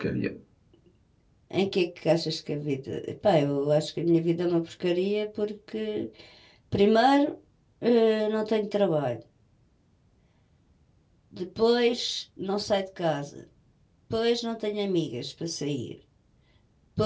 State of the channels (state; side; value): identical; both; correlation 1.00